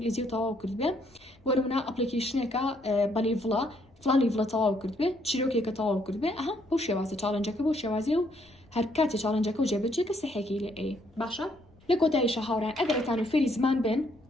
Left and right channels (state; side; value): noise; left; rumble, 29 dB below the sound